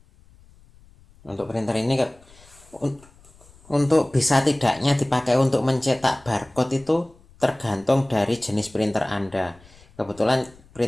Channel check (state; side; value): noise; left; rumble, 27 dB below the sound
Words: Untuk printer ini untuk bisa tidaknya dipakai untuk mencetak barcode itu tergantung dari jenis printer Anda. Kebetulan